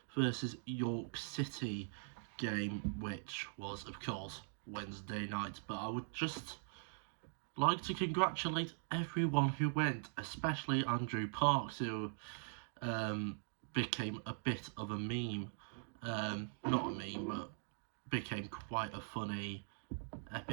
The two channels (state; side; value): silent; left; digital silence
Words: versus York City game, which was of course Wednesday night. But I would just like to congratulate everyone who went, especially Andrew Parks, who became a bit of a meme. Not a meme, but became quite a funny